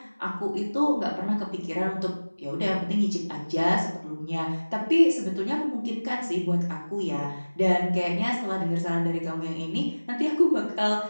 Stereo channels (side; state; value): both; inverted; correlation -1.00